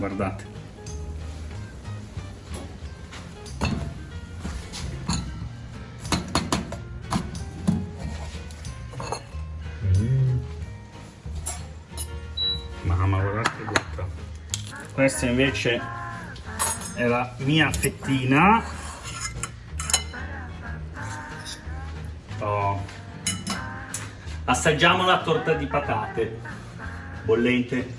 Mamma, guardate che botta. Questa invece è la mia fettina. Oh. Assaggiamo la torta di patate bollente.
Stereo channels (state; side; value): identical; both; correlation 1.00